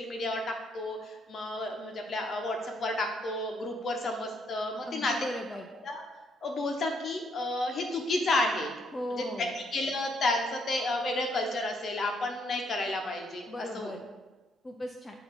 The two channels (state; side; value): normal; both; correlation 0.72